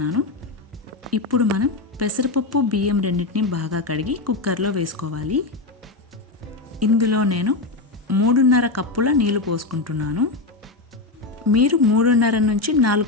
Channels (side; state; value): right; quieter; 3.4 dB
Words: ఇప్పుడు మనం పెసరపప్పు బియ్యం రెండింటిని బాగా కడిగి కుక్కర్లో వేసుకోవాలి. ఇందులో నేను 3.5 కప్పుల నీళ్లు పోసుకుంటున్నాను. మీరు 3.5 నుంచి 4